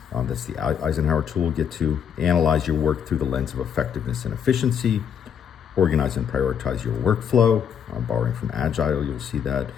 That's the Eisenhower tool we'll get to. Analyze your work through the lens of effectiveness and efficiency. Organize and prioritize your workflow. Borrowing from Agile, you'll see that.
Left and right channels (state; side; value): quieter; right; 8.0 dB